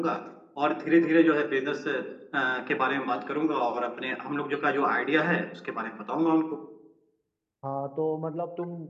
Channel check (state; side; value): identical; both; correlation 1.00